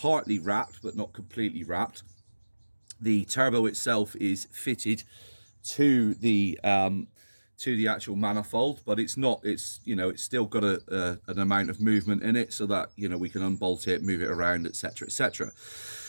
wrapped, but not completely wrapped. The turbo itself is fitted to the actual manifold, but it's not, it's still got an amount of movement in it, so that we can unbolt it, move it around, etc, etc.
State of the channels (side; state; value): both; inverted; correlation -1.00